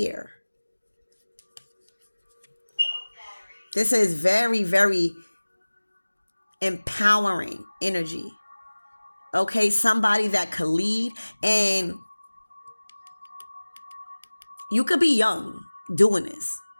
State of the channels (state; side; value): inverted; both; correlation -1.00